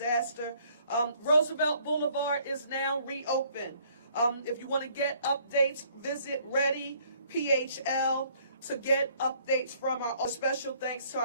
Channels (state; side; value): inverted; both; correlation -0.62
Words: Roosevelt Boulevard is now reopened. If you want to get updates, visit Ready PHL to get updates from our special thanks to